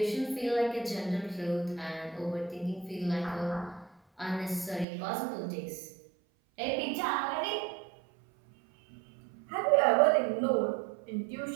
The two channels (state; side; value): drops out; left; at 4.9 s